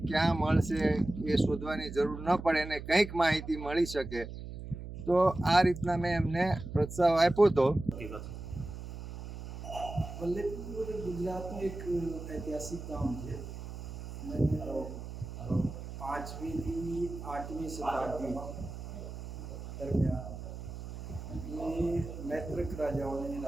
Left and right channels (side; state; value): right; noise; hum, 10 dB below the sound